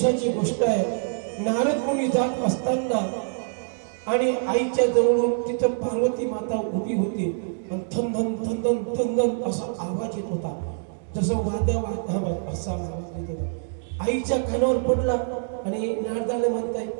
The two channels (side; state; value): left; silent; digital silence